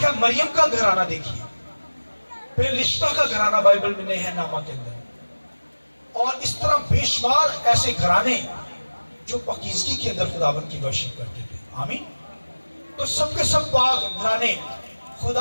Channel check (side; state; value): both; inverted; correlation -1.00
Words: مریم کا گھرانہ دیکھیے، پھر رشتہ کا گھرانہ بائبل میں نہیں ہے نامہ کے اندر، اور اس طرح بے شمار ایسے گھرانے جو پاکیزگی کے اندر خداوند کی ورشپ کرتے تھے، آمین۔ تو سب کے سب پاک گھرانے،